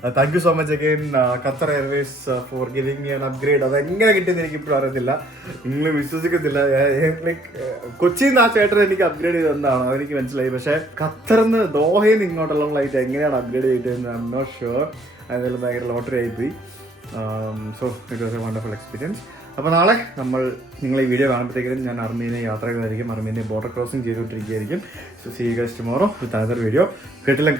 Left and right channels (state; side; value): normal; both; correlation 0.63